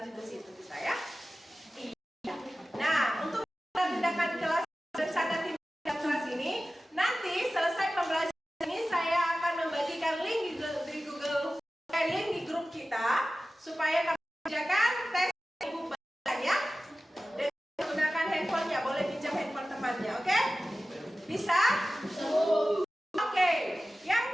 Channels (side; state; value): both; normal; correlation 0.95